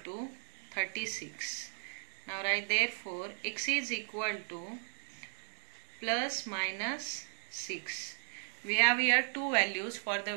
to 36. Now write therefore x is equal to plus minus 6. We have here two values for the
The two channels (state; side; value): silent; left; 54 dB below the other